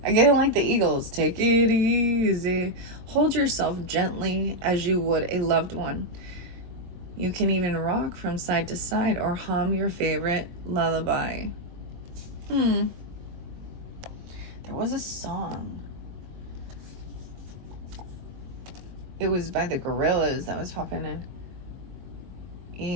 I get it like the Eagles. Take it easy. Hold yourself gently as you would a loved one. You can even rock from side to side or hum your favorite lullaby. There was a song. It was by the Gorillas that was popping in.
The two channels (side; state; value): left; late; 23 ms